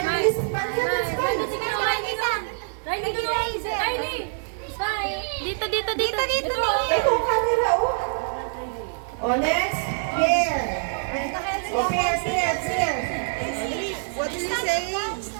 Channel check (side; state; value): left; silent; digital silence